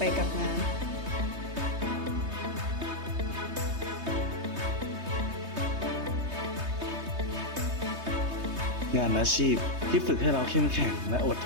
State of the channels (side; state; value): left; late; 3.2 ms